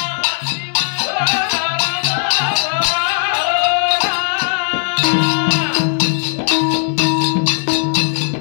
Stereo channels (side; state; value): right; silent; 68 dB below the other